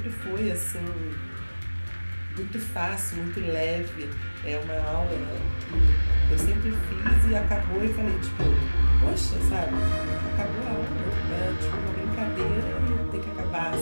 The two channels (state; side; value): inverted; both; correlation -1.00